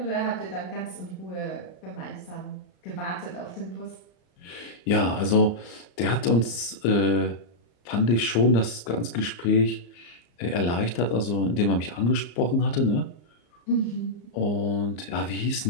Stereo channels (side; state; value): right; late; 34 ms